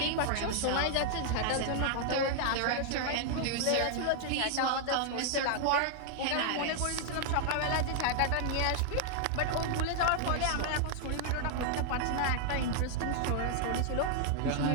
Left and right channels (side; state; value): both; different; correlation 0.00